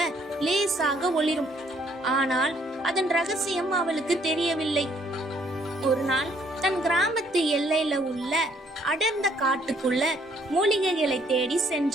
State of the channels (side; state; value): both; normal; correlation 0.65